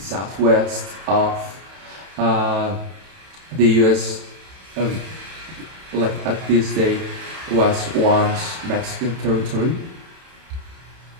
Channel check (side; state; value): left; late; 31 ms